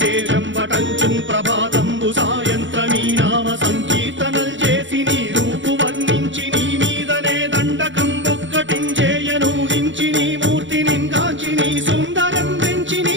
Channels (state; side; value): late; left; 0.55 ms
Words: వటంచుం ప్రభాతంబు సాయంత్రమీ నామ సంకీర్తనల్ చేసి నీ రూపు వర్ణించి నీ మీదనే దండకం ఒక్కటించేయనూహించి నీ మూర్తిని కాంచి నీ సుందరం పెంచి